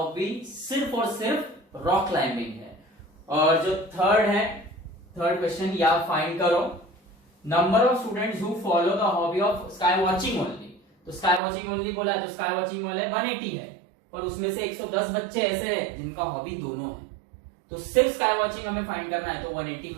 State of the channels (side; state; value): left; drops out; at 11.4 s